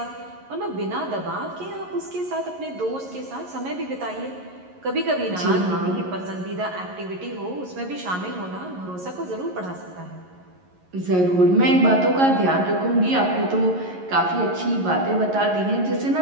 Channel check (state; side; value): late; left; 11 ms